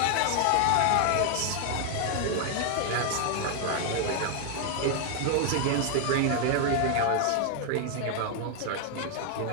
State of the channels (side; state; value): both; different; correlation 0.00